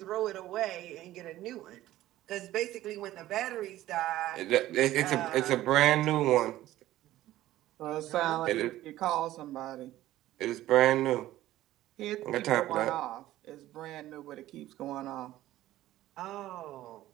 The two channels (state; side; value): quieter; left; 14.8 dB